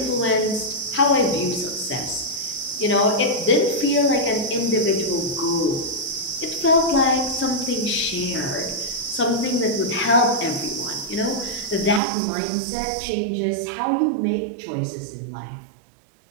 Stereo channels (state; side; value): drops out; left; at 12.0 s